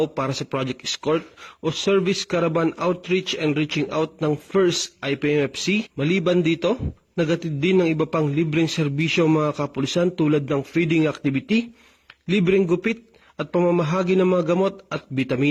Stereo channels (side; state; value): both; identical; correlation 1.00